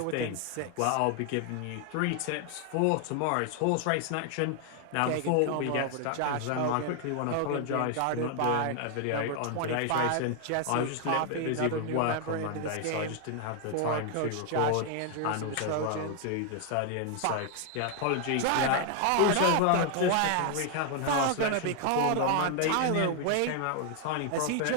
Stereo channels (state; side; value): different; both; correlation 0.00